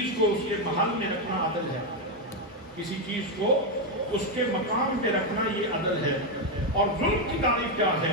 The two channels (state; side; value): normal; both; correlation 0.05